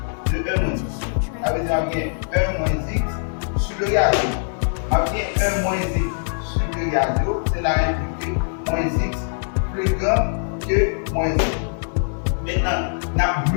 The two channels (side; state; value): right; silent; 64 dB below the other